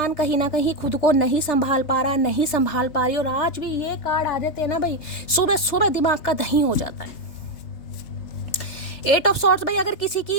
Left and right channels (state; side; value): late; right; 3.3 ms